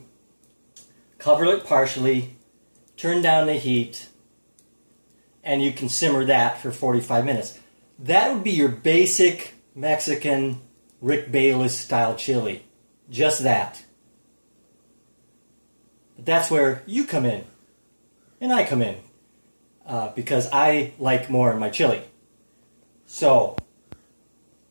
cover it partially, turn down the heat, and you can simmer that for 45 minutes. That would be your basic Mexican Rick Bayless style chili. Just that. But that's where you come in, and I come in, because I like more in my chili. So,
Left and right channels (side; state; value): both; inverted; correlation -1.00